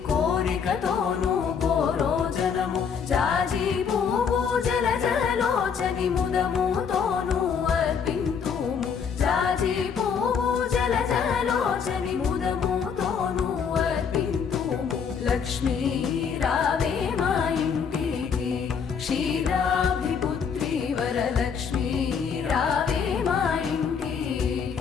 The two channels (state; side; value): quieter; right; 6.6 dB